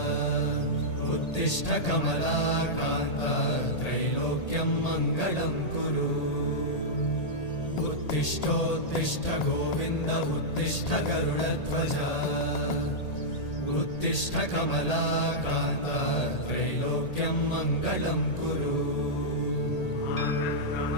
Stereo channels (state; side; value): late; right; 1.8 ms